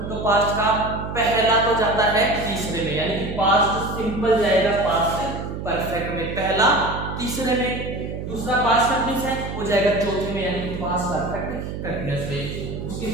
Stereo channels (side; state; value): right; noise; hum, 7 dB below the sound